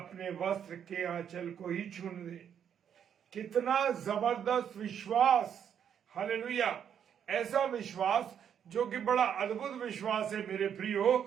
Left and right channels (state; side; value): quieter; left; 8.5 dB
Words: वस्त्र के आंचल को ही छूने दे। कितना जबरदस्त विश्वास! हालेलुया। ऐसा विश्वास जो कि बड़ा अद्भुत विश्वास है मेरे